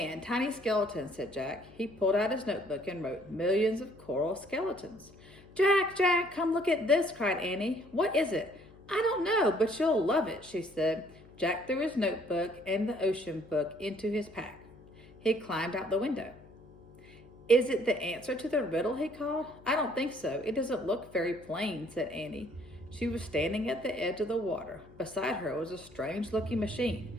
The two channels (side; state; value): left; noise; hum, 23 dB below the sound